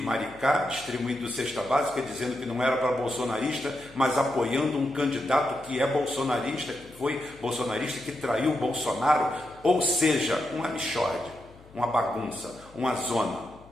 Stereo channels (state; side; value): noise; left; hum, 24 dB below the sound